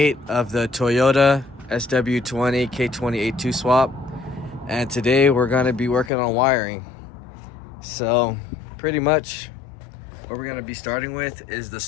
of the Toyota sw20 k20a2 swap, and today we're going to be working on wiring. So pretty much what we're going to be starting with is the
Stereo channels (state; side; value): drops out; right; at 6.1 s